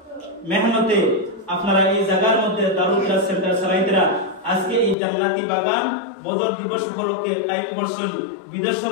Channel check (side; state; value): right; drops out; at 5.0 s